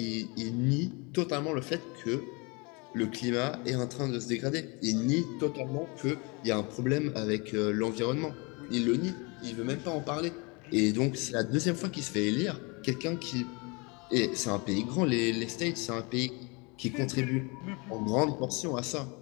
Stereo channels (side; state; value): right; quieter; 29.4 dB